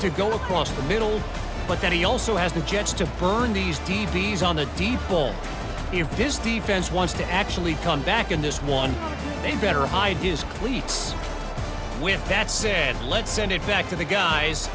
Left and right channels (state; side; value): identical; both; correlation 1.00